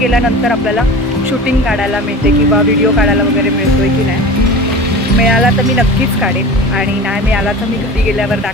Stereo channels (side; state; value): both; normal; correlation 0.35